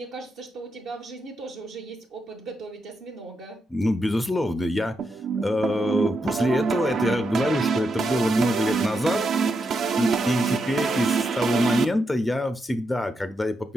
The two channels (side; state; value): both; normal; correlation 0.84